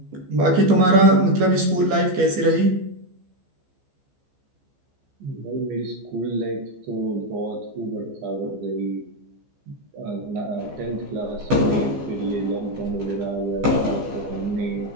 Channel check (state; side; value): late; left; 15 ms